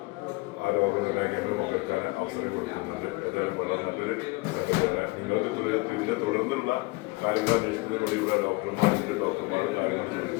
ആ രോഗനിർണയ കേന്ദ്രം പങ്കെടുക്കാൻ അവസരം കൊടുക്കുന്നുണ്ട്. ഏതായാലും വളരെ നല്ലൊരു സംഗതിയാണ്. നിങ്ങൾക്ക് ഇതിന്റെ തുടർന്നുള്ള കാര്യങ്ങൾ അന്വേഷിക്കുന്നതിന് വേണ്ടി ഇവിടെ ഡോക്ടർമാരുടെ കാര്യങ്ങൾ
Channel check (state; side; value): quieter; right; 24.4 dB